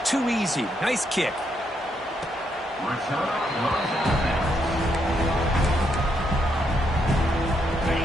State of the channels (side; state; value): both; normal; correlation 0.77